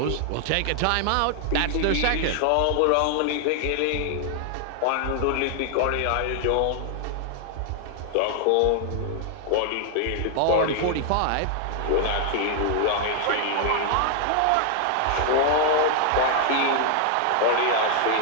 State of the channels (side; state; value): both; different; correlation 0.00